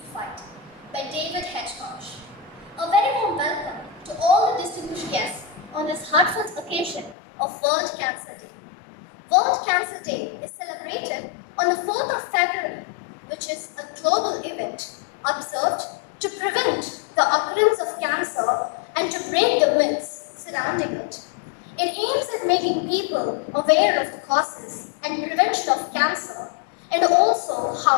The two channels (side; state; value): right; drops out; at 7.2 s